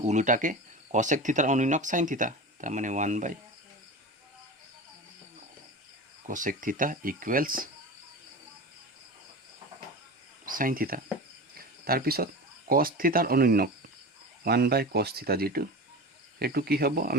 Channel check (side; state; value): both; normal; correlation 0.30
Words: উলোটাকে কসেক থিতাৰ অনুন্যক সাইন থিতা, তাৰমানে 1/cosec থিতা ইকুৱেলছ সাইন থিতা। তাৰপিছত কস থিতাৰ অনুন্নক 1/cos থিতা যেটো এটো কি হ'ব